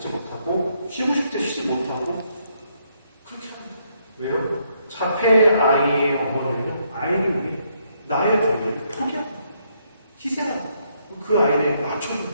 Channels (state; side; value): inverted; both; correlation -0.74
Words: 못하고 쉬고 싶을 때 쉬지 못하고 그렇게 합니다. 왜요? 자폐 아이의 어머니는 아이를 위해 나의 권리를 포기합니다. 희생합니다. 그 아이를 맞춰주는